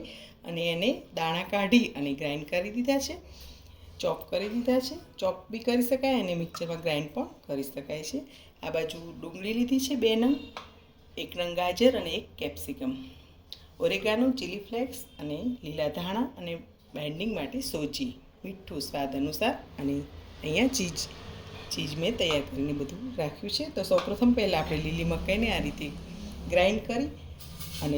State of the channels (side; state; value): both; identical; correlation 1.00